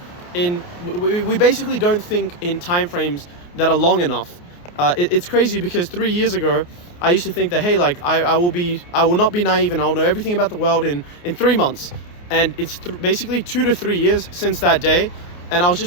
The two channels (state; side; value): late; right; 28 ms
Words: We basically don't think in time frames that are long enough. It's crazy because 3 years ago, I used to think that, hey, like I will not be naive and I'll know everything about the world in 3 months. And it's basically 2 to 3 years since that day. And I was